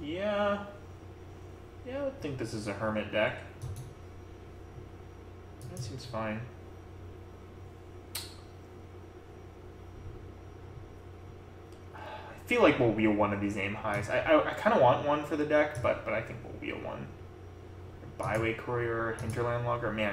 Yeah, I would think this is a Hermit deck. That seems fine. I feel like we'll wheel one of these aim highs. I kind of want one for the deck, but I think we'll wheel one. Byway Courier, Hinterland Logger.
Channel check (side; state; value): both; identical; correlation 1.00